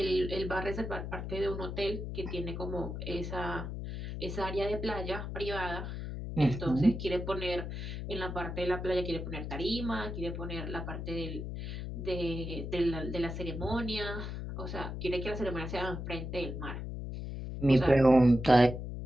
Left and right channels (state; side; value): noise; left; hum, 6 dB below the sound